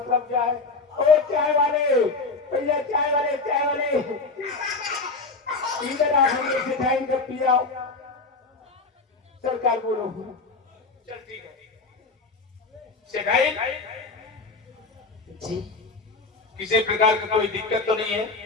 क्या है ओ चाय वाले भैया चाय वाले इधर आ हमें सेठाई का पिया सरकार बोलो चल ठीक है। सेठाई जी किसी प्रकार का कोई दिक्कत तो नहीं है?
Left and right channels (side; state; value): right; quieter; 3.9 dB